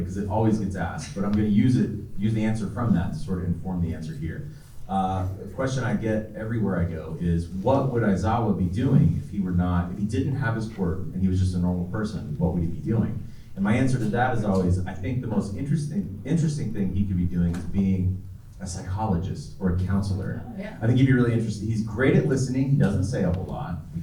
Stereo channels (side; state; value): both; identical; correlation 1.00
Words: because it always gets asked, but I'm going to use the answer from that to sort of inform the answer here. The question I get everywhere I go is, what would Aizawa be doing if he didn't have his quirk and he was just a normal person? What would he be doing? And my answer to that is always, I think the most interesting thing he could be doing is being a psychologist or a counselor. Yeah. I think he'd be really interested. He's great at listening. He doesn't say a whole lot.